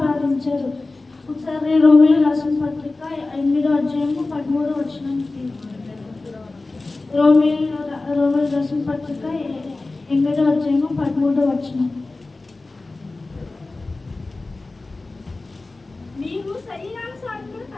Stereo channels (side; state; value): right; quieter; 3.3 dB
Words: ఒకసారి రోమియోలు రాసిన పత్రిక 8వ అధ్యాయము 13వ వచనం. రోమియోలు రాసిన పత్రిక 8వ అధ్యాయము 13వ వచనం. నీవు శరీరానుసారంగా